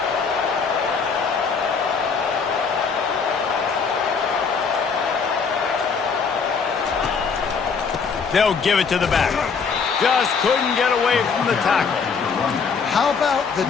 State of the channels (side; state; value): right; quieter; 5.6 dB